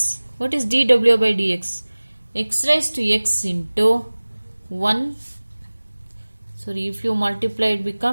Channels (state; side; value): inverted; both; correlation -1.00